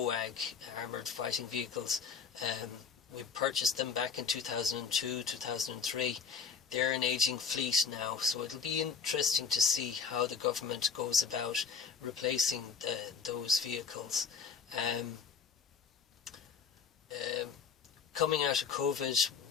armoured fighting vehicles, we purchased them back in 2002, 2003. They're an aging fleet now, so it'll be interesting to see how the government goes about replacing those vehicles. Coming out of COVID,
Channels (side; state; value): right; quieter; 6.1 dB